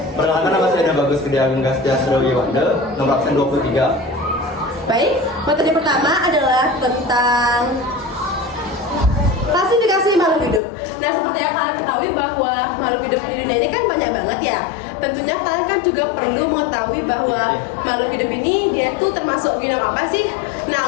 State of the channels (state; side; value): drops out; right; at 10.6 s